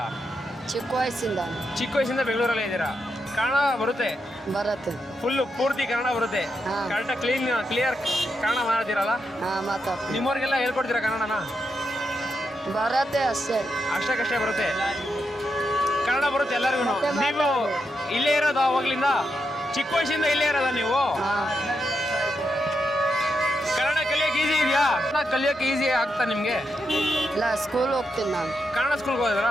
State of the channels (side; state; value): both; normal; correlation 0.84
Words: ಚಿಕ್ಕ ವಯಸ್ಸಿಂದ ಚಿಕ್ಕ ವಯಸ್ಸಿಂದ ಬೆಂಗಳೂರಲ್ಲೇ ಇದ್ದೀರಾ. ಕನ್ನಡ ಬರುತ್ತೆ? ಬರುತ್ತೆ. ಫುಲ್ಲು ಪೂರ್ತಿ ಕನ್ನಡ ಬರುತ್ತೆ? ಹಾ. ಕರೆಕ್ಟಾಗಿ ಕ್ಲಿಯರ್ ಕನ್ನಡ ಮಾತಾಡ್ತೀರಲ್ಲ? ಹಾಂ ಮಾತಾಡ್ತೀನಿ. ನಿಮ್ಮವ್ರಿಗೆಲ್ಲ ಹೇಳ್ಕೊಡ್ತೀರಾ ಕನ್ನಡನ? ಬರತ್ತೆ ಅಷ್ಟೇ. ಅಷ್ಟಕ್ಕಷ್ಟೇ ಬರುತ್ತೆ. ಕನ್ನಡ ಬರುತ್ತೆ ಎಲ್ಲರಿಗೂ. ನೀವು ಇಲ್ಲೇ ಇರೋದು ಅವಾಗ್ಲಿಂದ? ಚಿಕ್ಕ ವಯಸ್ಸಿಂದ ಇಲ್ಲೇ ಇರೋದ ನೀವು? ಹಾಂ ಕನ್ನಡ ಕಲಿಯೋಕೆ ಈಸಿ ಇದೆಯಾ? ಕನ್ನಡ ಕಲಿಯೋಕೆ ಈಸಿ ಆಗ್ತಾ ನಿಮಗೆ? ಇಲ್ಲ ಸ್ಕೂಲ್ ಹೋಗ್ತೀನಿ ನಾನು. ಕನ್ನಡ ಸ್ಕೂಲ್ಗೆ